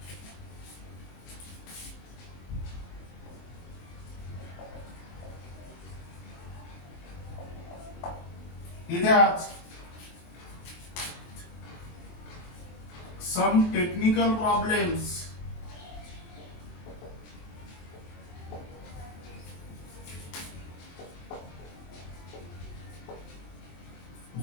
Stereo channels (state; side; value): late; right; 23 ms